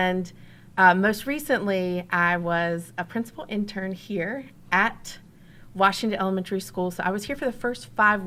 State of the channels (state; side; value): identical; both; correlation 1.00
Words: most recently, I was a principal intern here at Washington Elementary School. So I was here for the first 5